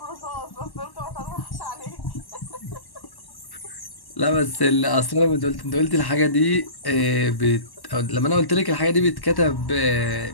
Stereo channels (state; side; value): late; right; 1.1 ms